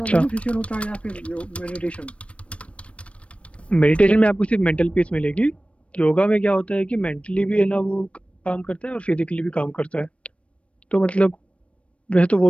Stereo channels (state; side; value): late; right; 0.062 ms